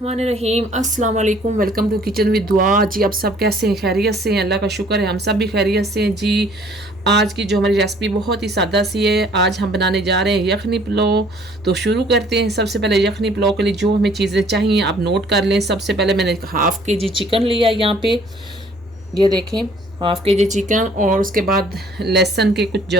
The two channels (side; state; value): both; normal; correlation 0.57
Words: अस्सलाम वालेकुम। वेलकम टू किचन विद दुआ। जी आप सब कैसे हैं? खैरियत से हैं? अल्लाह का शुक्र है हम सब भी खैरियत से हैं। जी आज की जो हमारी रेसिपी बहुत ही सादा सी है। आज हम बनाने जा रहे हैं यखनी पुलाव। तो शुरू करते हैं। सबसे पहले यखनी पुलाव के लिए जो हमें चीज़ें चाहिए आप नोट कर लें। सबसे पहले मैंने हाफ़ के जी चिकन लिया यहाँ पे, ये देखें हाफ़ के जी चिकन, और उसके बाद लहसुन के कुछ